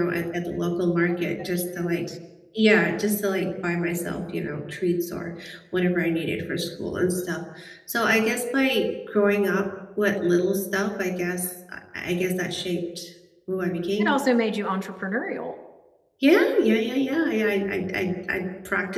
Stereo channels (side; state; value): both; identical; correlation 1.00